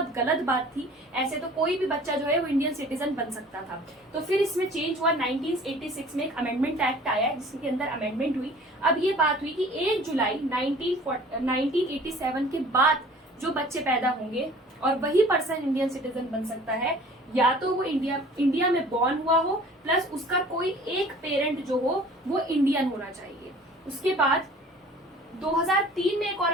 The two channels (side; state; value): both; normal; correlation 0.48